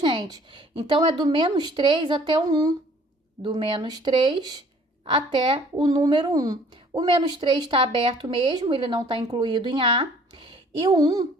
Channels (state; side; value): normal; both; correlation 0.55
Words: Então, é do menos 3 até o 1. Do menos 3 até o número 1. O menos 3 está aberto mesmo, ele não está incluído em A. E o 1